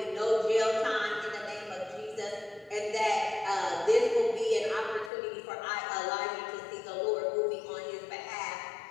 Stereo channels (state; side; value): drops out; right; at 5.1 s